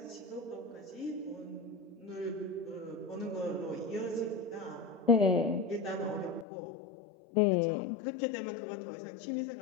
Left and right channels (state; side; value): drops out; right; at 6.5 s